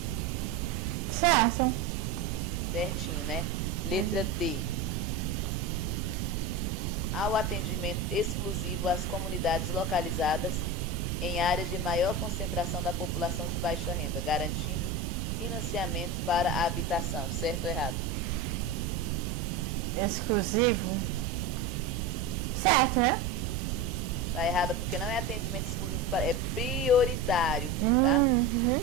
Certo. Certinho, né? Letra D. Ao atendimento exclusivo às comunidades localizadas em áreas de maior concentração da população de baixa renda, garantindo financiamento para a habitação. Certo ou errado? Exclusivo? Certo, né? Tá errado porque não é atendimento exclusivo, é prioritário. Tá?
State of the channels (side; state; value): right; noise; rumble, 2 dB below the sound